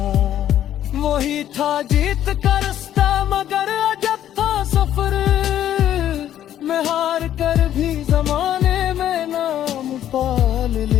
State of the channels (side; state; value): right; quieter; 11.4 dB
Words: वही था जीत का रास्ता मगर अजब था सफर, मैं हार कर भी जमाने में नाम पाल